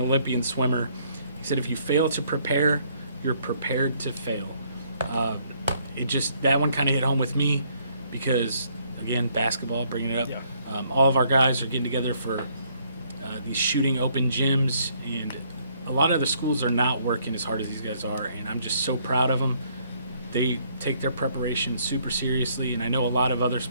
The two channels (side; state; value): both; inverted; correlation -0.67